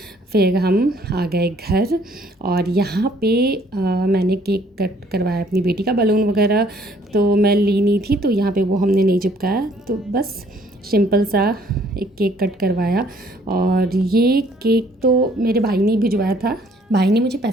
फिर हम आ गए घर, और यहाँ पे मैंने केक कट करवाया अपनी बेटी का। बलून वगैरह तो मैं ली नहीं थी, तो यहाँ पे वो हमने नहीं चिपकाया, तो बस सिंपल सा एक केक कट करवाया। और ये केक तो मेरे भाई ने भिजवाया था, भाई ने मुझे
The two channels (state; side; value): normal; both; correlation 0.62